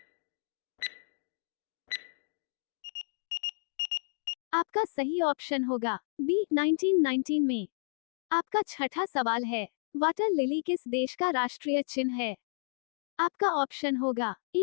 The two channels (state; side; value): silent; right; digital silence